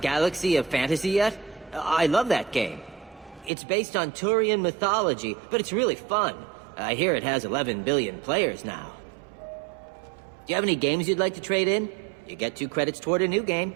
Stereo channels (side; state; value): left; drops out; at 3.5 s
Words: Galaxy of Fantasy yet? I love that game. It's based on Turian mythology, but it's really fun. I hear it has 11 billion players now. Do you have any games you'd like to trade in? You get 2 credits toward a new game.